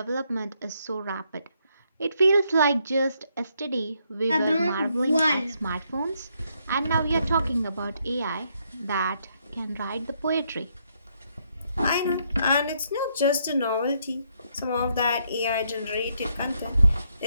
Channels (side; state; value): both; inverted; correlation -0.75